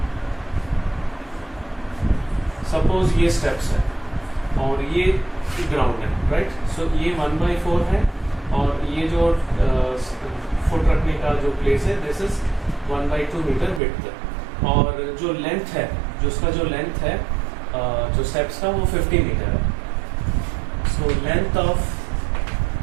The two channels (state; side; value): drops out; left; at 13.8 s